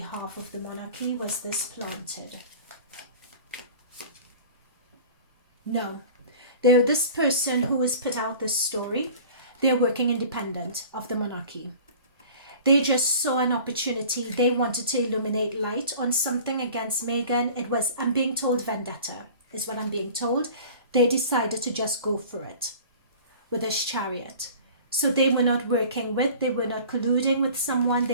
of the monarchy? Was this planted? No. This person who has put out this story, they're working independent of the monarchy. They just saw an opportunity. They wanted to illuminate light on something against Meghan. It was, I'm being told, vendetta is what I'm being told. They decided to just go for it with this Chariot. So they were not working with, they were not colluding with someone.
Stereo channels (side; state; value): both; inverted; correlation -0.43